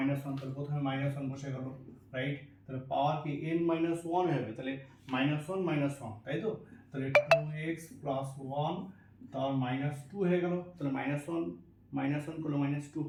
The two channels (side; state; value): both; identical; correlation 1.00